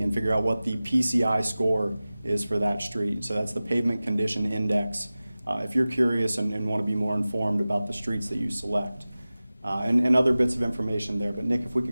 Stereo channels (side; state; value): both; inverted; correlation -0.97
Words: and figure out what the PCI score is for that street. So that's the Pavement Condition Index. If you're curious and want to be more informed about the streets that you select. And other bits of information there. But Nick, if we